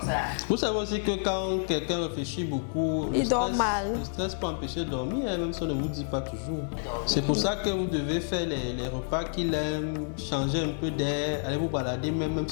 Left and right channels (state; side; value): silent; right; digital silence